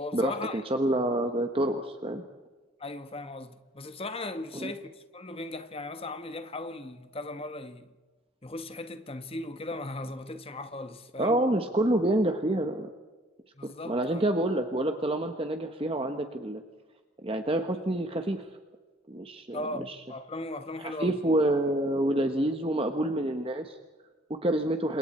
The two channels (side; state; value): both; normal; correlation 0.57